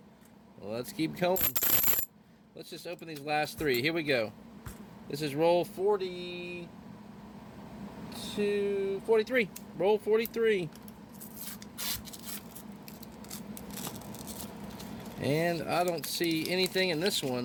Well, let's keep going. Let's just open these last three. Here we go. This is roll 43. Roll 43. And I don't see anything in this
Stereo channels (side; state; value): both; identical; correlation 1.00